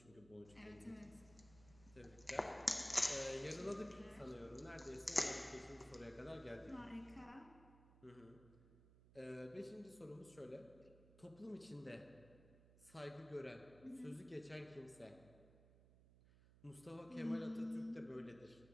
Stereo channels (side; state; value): right; noise; hum, 21 dB below the sound